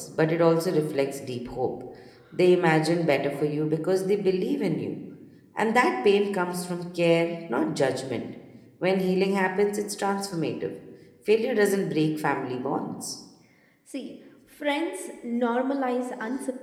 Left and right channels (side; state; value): both; identical; correlation 1.00